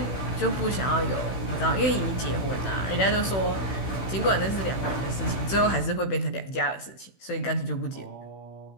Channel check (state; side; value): late; right; 16 ms